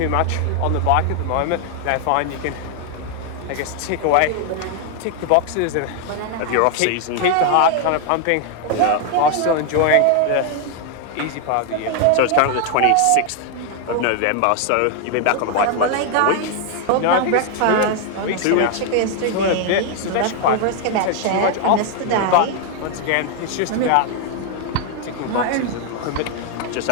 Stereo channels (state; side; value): different; both; correlation 0.00